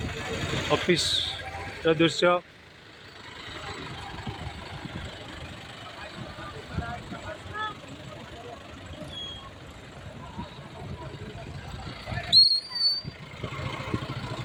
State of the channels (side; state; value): both; identical; correlation 1.00